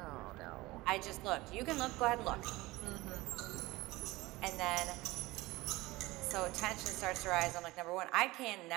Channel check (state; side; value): quieter; left; 20.1 dB